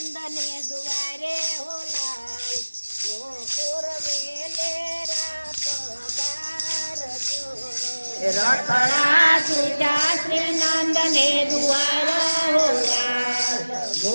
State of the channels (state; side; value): inverted; both; correlation -1.00